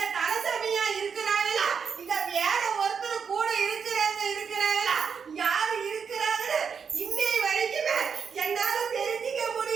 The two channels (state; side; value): quieter; left; 6.4 dB